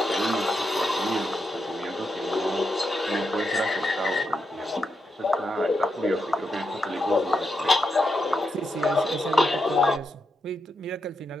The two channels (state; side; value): normal; both; correlation 0.83